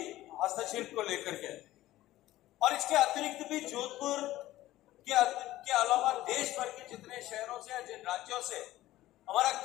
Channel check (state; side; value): quieter; right; 15.6 dB